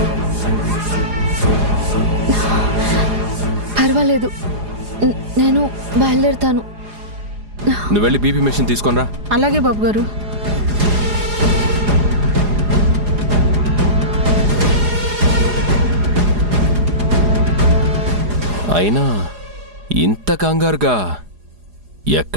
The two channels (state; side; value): late; left; 4.8 ms